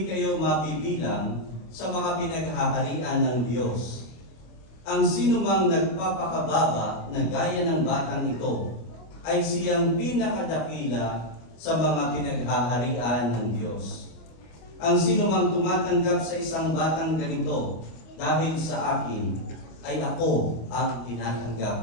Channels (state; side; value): late; right; 25 ms